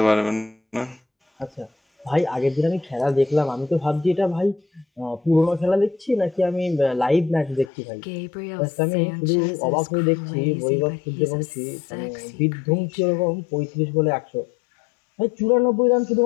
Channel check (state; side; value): drops out; right; at 7.7 s